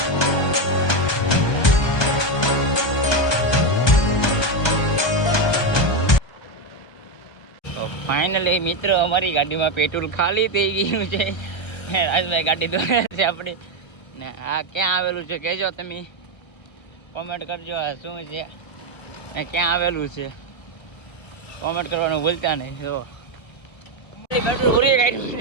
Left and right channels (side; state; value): right; late; 1.2 ms